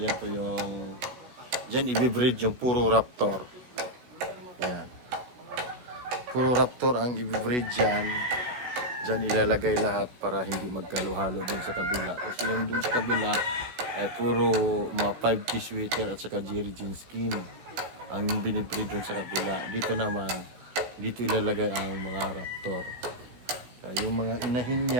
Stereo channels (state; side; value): late; left; 16 ms